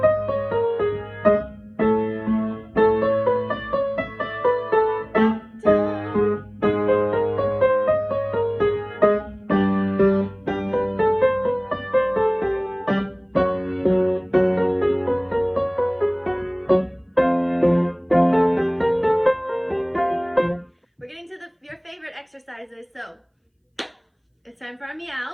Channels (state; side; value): identical; both; correlation 1.00